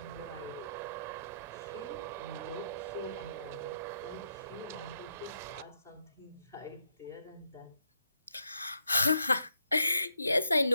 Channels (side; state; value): both; inverted; correlation -0.78